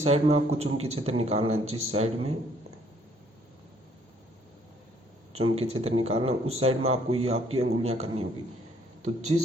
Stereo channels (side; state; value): both; normal; correlation 0.64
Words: साइड में आपको चुंबकीय क्षेत्र निकालना है, जिस साइड में चुंबकीय क्षेत्र निकालना उस साइड में आपको ये आपकी अंगुलियां करनी होगी। तो